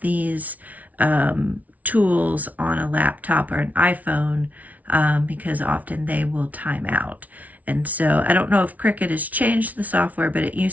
tools on a laptop or an iPhone because often they will time out. And so I don't know if Cricut has changed the software, but it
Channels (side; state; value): left; late; 0.072 ms